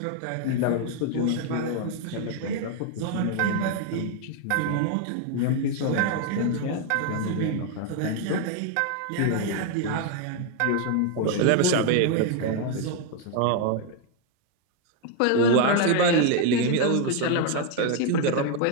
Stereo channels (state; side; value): different; both; correlation 0.01